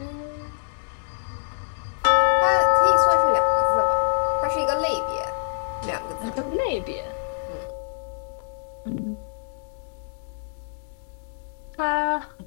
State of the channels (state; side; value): silent; right; 62 dB below the other